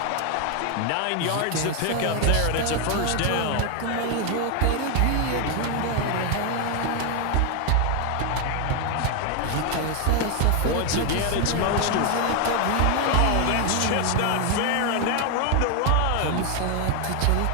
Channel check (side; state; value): both; different; correlation 0.01